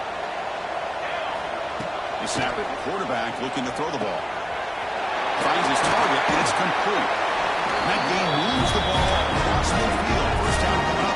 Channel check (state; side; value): identical; both; correlation 1.00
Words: They snap it, quarterback looking to throw the ball. Finds his target, and it's complete. That game moves the ball across midfield. First down coming up